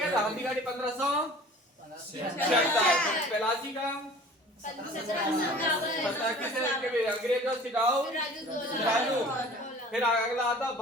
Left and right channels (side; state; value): both; normal; correlation 0.45